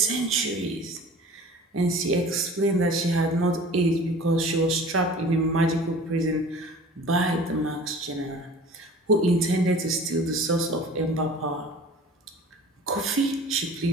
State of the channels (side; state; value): both; normal; correlation 0.43